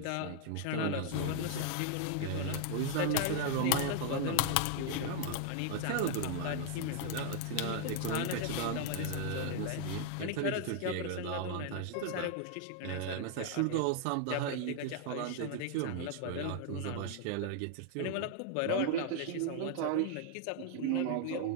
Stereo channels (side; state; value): both; different; correlation 0.00